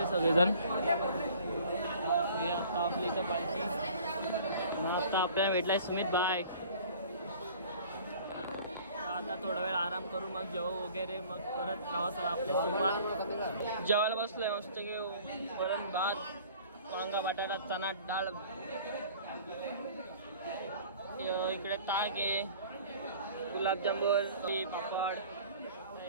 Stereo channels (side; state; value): both; inverted; correlation -0.48